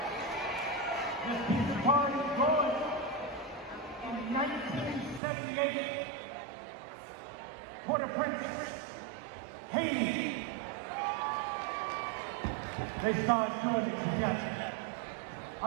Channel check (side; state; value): left; drops out; at 5.2 s